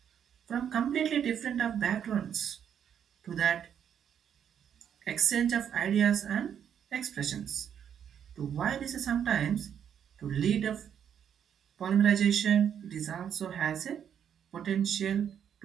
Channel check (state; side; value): quieter; left; 8.7 dB